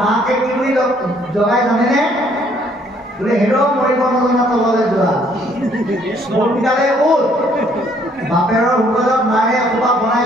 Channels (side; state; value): both; normal; correlation 0.64